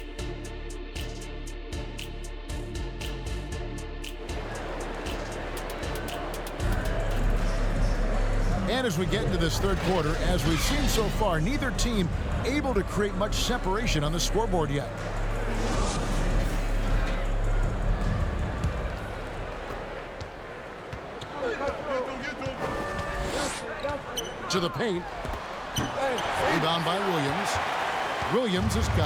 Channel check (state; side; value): identical; both; correlation 1.00